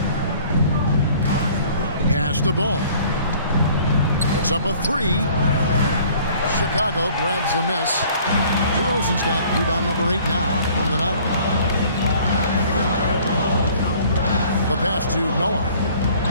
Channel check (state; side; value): inverted; both; correlation -0.54